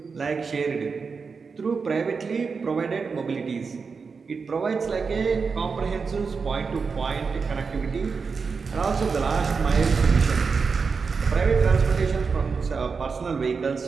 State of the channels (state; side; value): quieter; left; 5.1 dB